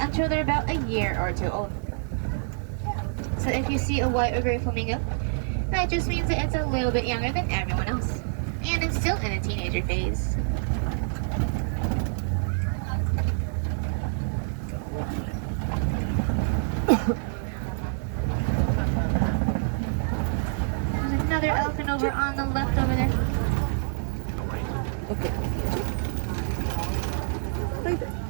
they're about a year or two old. So if you see a white or gray flamingo, that just means that it's a little bit younger than everyone else. And it's still in the teenager phase. There's another elephant over on the left over there. Okay. Right there.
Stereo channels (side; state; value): left; silent; 57 dB below the other